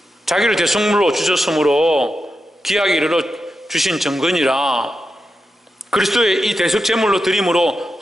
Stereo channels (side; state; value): both; normal; correlation 0.88